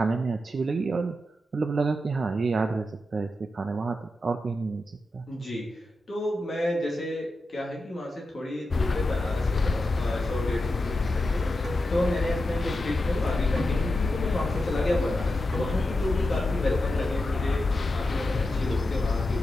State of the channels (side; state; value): both; normal; correlation 0.89